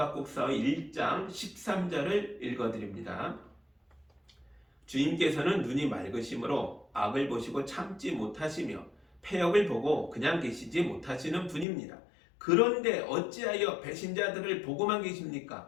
1장 13절을 읽어드립니다. 주님께서는 눈이 맑으심으로 악을 보시고 참지 못하시며 패역을 보고 그냥 계시지 못하시는 분입니다. 그런데 어찌하여 배신자들을 보고만 계십니까?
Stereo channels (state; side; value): drops out; right; at 11.7 s